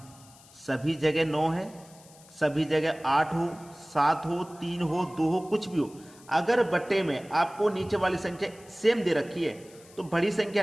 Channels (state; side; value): noise; left; hiss, 24 dB below the sound